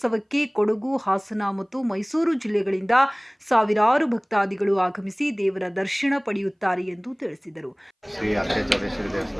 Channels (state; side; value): identical; both; correlation 1.00